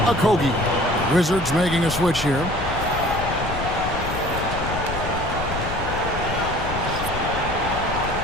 Okogie. Wizards making a switch here.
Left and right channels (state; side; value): noise; left; rumble, 7 dB below the sound